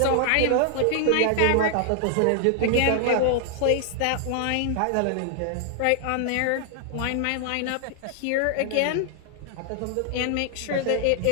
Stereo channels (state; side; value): different; both; correlation 0.00